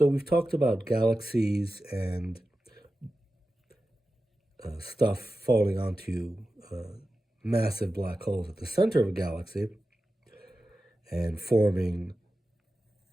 we've talked about galaxies and stuff falling onto massive black holes at the center of a galaxy and forming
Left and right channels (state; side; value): normal; both; correlation 0.93